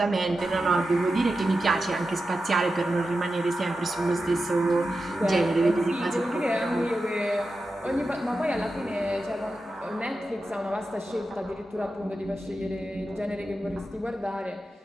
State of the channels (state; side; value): normal; both; correlation 0.91